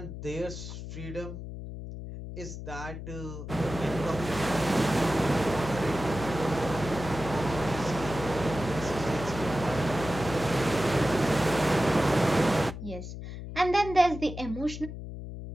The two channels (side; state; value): left; noise; hum, 9 dB below the sound